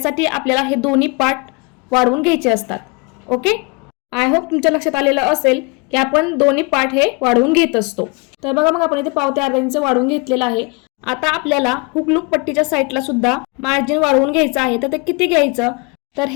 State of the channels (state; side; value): quieter; right; 28.8 dB